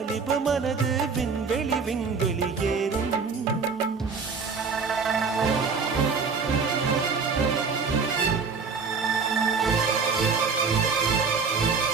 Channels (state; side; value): quieter; left; 5.1 dB